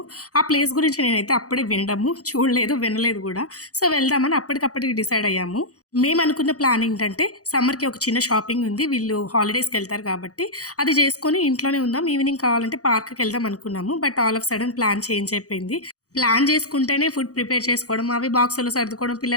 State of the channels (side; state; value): right; late; 0.67 ms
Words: ఆ ప్లేస్ గురించి నేనైతే అప్పుడే వినడము చూడలేదు, వినలేదు కూడా. సో వెళ్దామని అప్పటికప్పటికి డిసైడ్ అయ్యాము. మేము అనుకున్న ప్లాన్ ఏంటంటే సమ్మర్కి ఒక చిన్న షాపింగ్ ఉంది, వీళ్ళు హాలిడేస్కి వెళ్తారు కాబట్టి అది చేసుకొని ఇంట్లోనే ఉందాం, ఈవినింగ్ కావాలంటే పార్క్కి వెళ్దాం అనుకున్నాము. But all of sudden plan change అయిపోయింది. ప్లాన్ చేసుకుంటేనే ఫుడ్ ప్రిపేర్ చేసుకోవడం, అవి బాక్సులో సర్దుకోవడం,